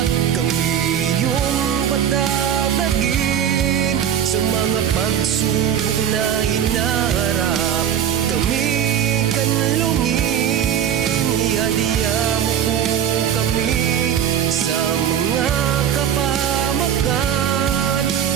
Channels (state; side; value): quieter; left; 9.3 dB